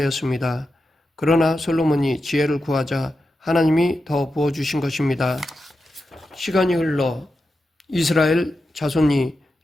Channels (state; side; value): normal; both; correlation 0.90